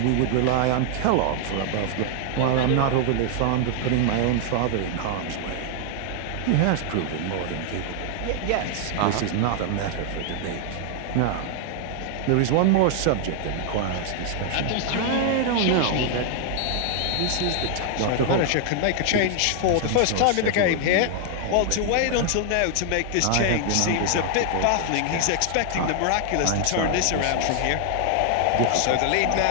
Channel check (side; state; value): both; different; correlation 0.00